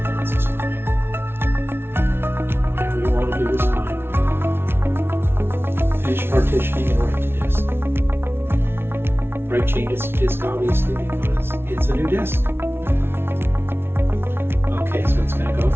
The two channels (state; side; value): late; left; 0.12 ms